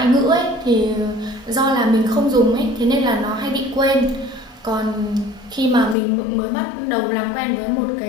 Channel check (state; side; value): drops out; right; at 6.0 s